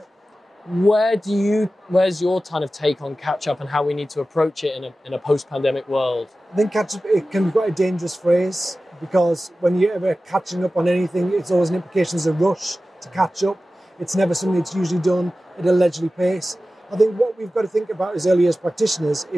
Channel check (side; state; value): both; normal; correlation 0.95